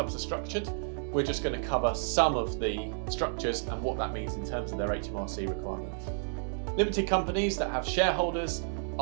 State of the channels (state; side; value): silent; left; digital silence